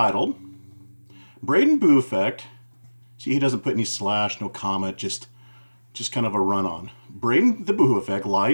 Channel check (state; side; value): inverted; both; correlation -1.00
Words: Braden Boo Effect. See, he doesn't put any slash, no comma, just kind of a run-on. Braden the Boohoo Effect,